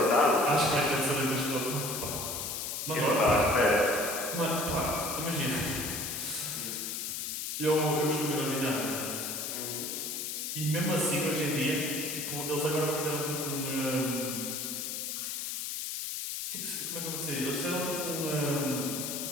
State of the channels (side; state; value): left; noise; hiss, 4 dB below the sound